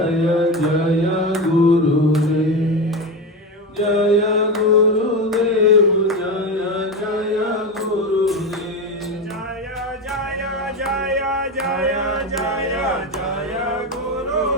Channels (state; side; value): normal; both; correlation 0.18